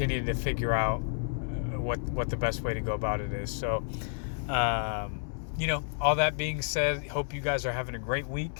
to figure out what the best way to go about it is. So all that being said, hope you guys are having a great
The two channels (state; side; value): silent; right; 57 dB below the other